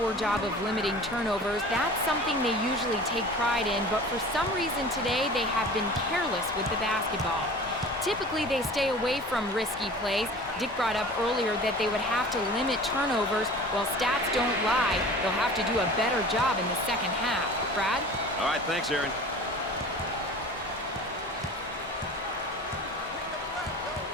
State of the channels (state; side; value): normal; both; correlation 0.40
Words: job of limiting turnovers. That's something they usually take pride in, but for some reason today they have been careless with the basketball. Typically they stay away from risky plays. Dick brought up earlier that they would have to limit turnovers. Well, stats don't lie. They'll have to do a better job in the second half. Brad? All right, thanks, Aaron.